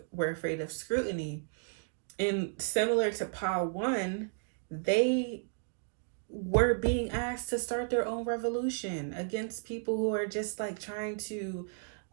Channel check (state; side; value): silent; left; digital silence